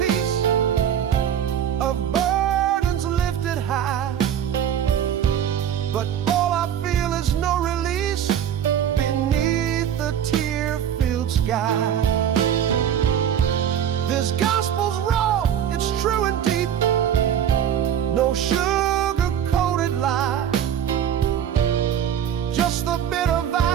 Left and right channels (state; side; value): quieter; left; 9.5 dB